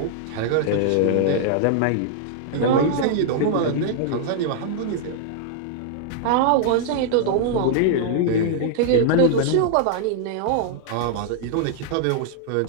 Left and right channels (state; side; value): different; both; correlation -0.01